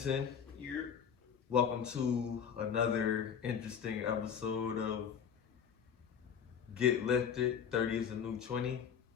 Welcome to another interesting episode of Get Lifted, 30 is a new 20.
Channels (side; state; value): right; quieter; 7.5 dB